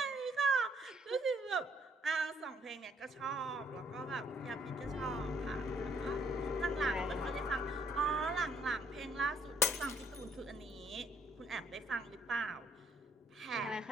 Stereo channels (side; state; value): both; normal; correlation 0.67